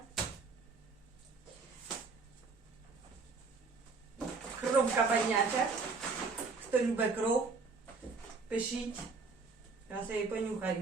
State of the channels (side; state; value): left; quieter; 4.3 dB